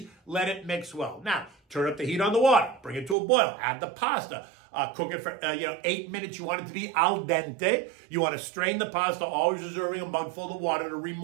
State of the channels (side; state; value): left; drops out; at 3.2 s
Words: let it mix well. Now, turn up the heat on the water, bring it to a boil, add the pasta, cook it for 8 minutes. You want it to be al dente. You want to strain the pasta, always reserving a mug full of water to